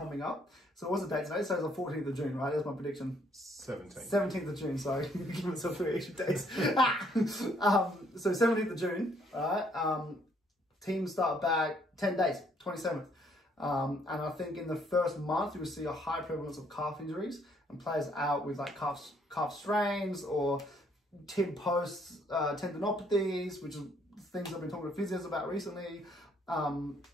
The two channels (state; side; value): normal; both; correlation 0.67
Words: up. So what's the date today? So it's the 14th of June, right? That's my prediction. 17th of June. Sorry, give myself 3 extra days. So 17th of June. All right. Teams start back 10 days, 27th. And I think in the first month, you will see a high prevalence of calf injuries and players out with like calf strains or tib post tendinopathies, which is things I've been talking to physios about recently,